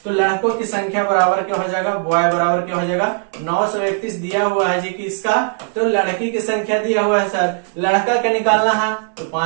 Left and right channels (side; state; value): left; silent; 60 dB below the other